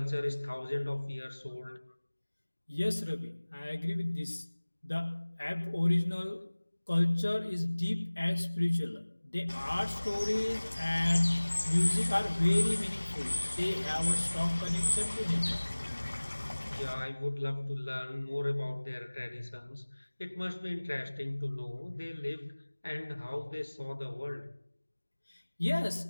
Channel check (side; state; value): both; inverted; correlation -1.00